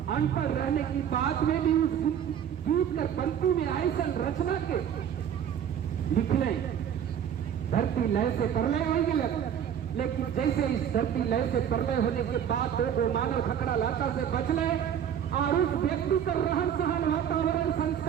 अनपढ़ रहने की बात में भी उस गीत कर पंक्ति में ऐसा रचना के लिखले। धरती लय से प्रलय हो गया, लेकिन जैसे इस धरती लय से प्रलय होने के बाद दो मानव खकड़ा लाता से बचले और उस व्यक्ति का रहन सहन वातावरण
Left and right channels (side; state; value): left; quieter; 9.0 dB